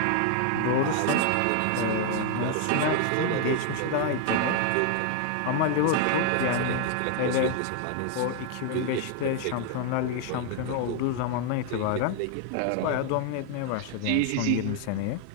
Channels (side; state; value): both; different; correlation 0.00